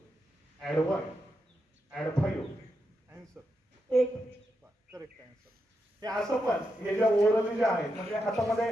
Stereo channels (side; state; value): both; normal; correlation 0.85